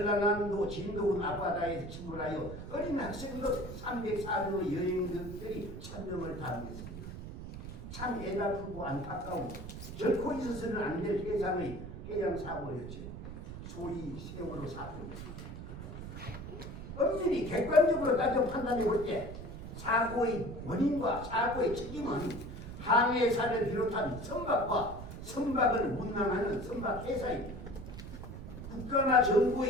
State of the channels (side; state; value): right; noise; rumble, 10 dB below the sound